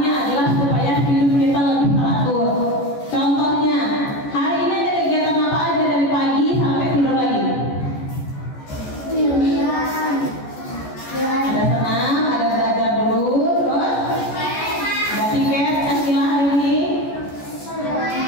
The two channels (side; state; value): right; late; 14 ms